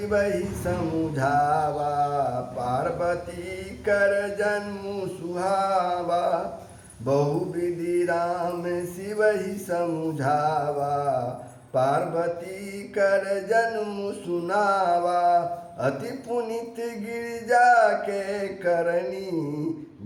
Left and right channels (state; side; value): identical; both; correlation 1.00